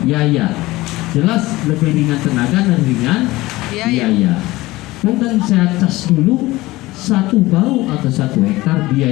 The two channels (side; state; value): right; quieter; 19.2 dB